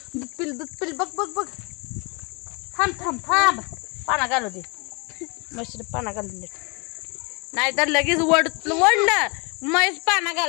पिल बघ बघ बघ थांब थांब थांब पाना घालू दे मशीन पाना घालून दे नाहीतर लगेच वडलं म्हैस पाना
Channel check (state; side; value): quieter; right; 30.9 dB